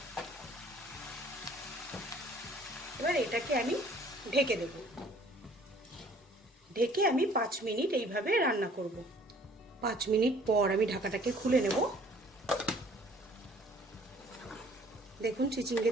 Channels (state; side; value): normal; both; correlation 0.55